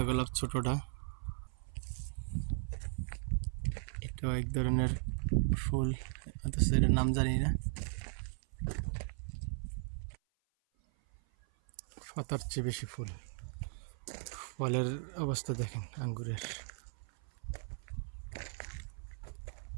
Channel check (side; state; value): left; silent; 53 dB below the other